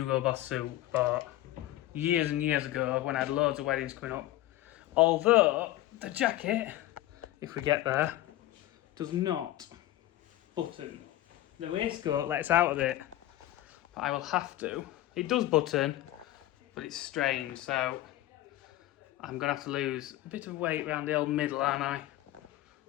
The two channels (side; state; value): right; quieter; 15.2 dB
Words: Boss suit I bought years and years ago when I had loads of weddings coming up. Although the jacket, if we get there, does not button. The waistcoat lets out of it, but I will have to. It does button, but it's strange, so I'm going to have to lose a bit of weight around the old middle, aren't I?